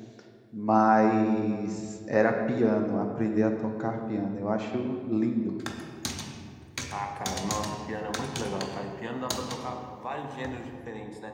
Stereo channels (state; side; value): identical; both; correlation 1.00